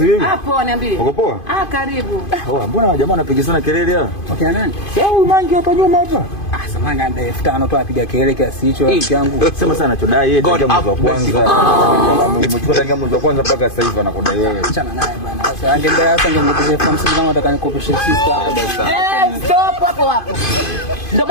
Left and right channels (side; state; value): right; late; 2.5 ms